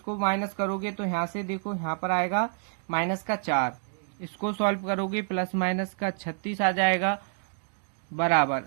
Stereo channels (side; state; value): left; silent; 58 dB below the other